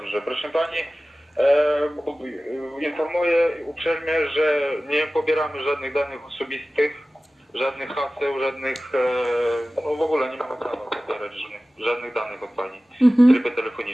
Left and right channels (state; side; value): normal; both; correlation 0.96